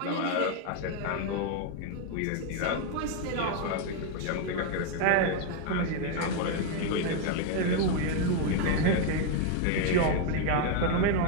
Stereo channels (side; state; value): both; different; correlation 0.01